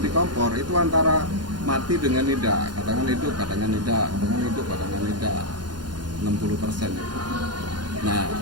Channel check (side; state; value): left; late; 0.71 ms